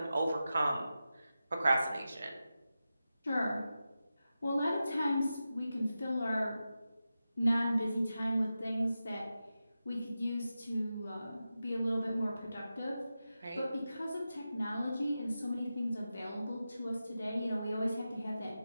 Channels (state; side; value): inverted; both; correlation -0.92